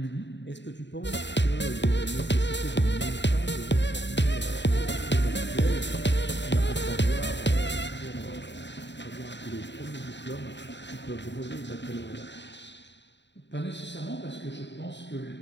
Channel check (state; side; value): late; right; 0.52 ms